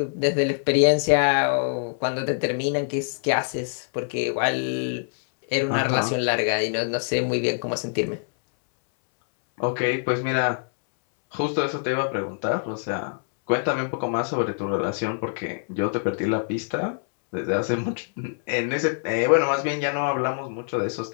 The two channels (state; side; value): silent; right; 62 dB below the other